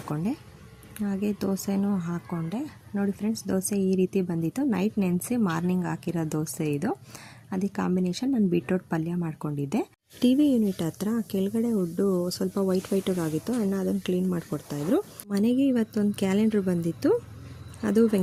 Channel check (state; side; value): identical; both; correlation 1.00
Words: ಹಾಗೆ ದೋಸೆನೂ ಹಾಕ್ಕೊಂಡೆ. ನೋಡಿ ಫ್ರೆಂಡ್ಸ್, ದೋಸೆ ಈ ರೀತಿ ಬಂದಿತ್ತು. ನೈಟ್ ನೆನೆಸಿ ಮಾರ್ನಿಂಗ್ ಹಾಕಿರೋ ದೋಸೆ ಇದು. ಅದಕ್ಕೆ ಕಾಂಬಿನೇಷನ್ ನಾನು ಬೀಟ್ರೋಟ್ ಪಲ್ಯ ಮಾಡ್ಕೊಂಡಿದ್ದೆ. TV ಯೂನಿಟ್ ಹತ್ರ ಕೆಳಗಡೆ ಉಡ್ಡು ಸ್ವಲ್ಪ ವೈಟಾಗಿತ್ತು. ಅಣ್ಣ ಅದನ್ನು ಕ್ಲೀನ್ ಮಾಡಿಕೊಡ್ತಾಯಿದ್ರು. ಮನೆಗೆ ಇವತ್ತೊಂದು ಕ್ಯಾಲೆಂಡ್ರ್ ಬಂದಿತ್ತು. ಅದು